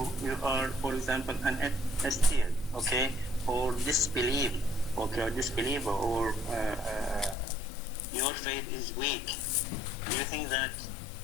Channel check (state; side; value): drops out; right; at 7.4 s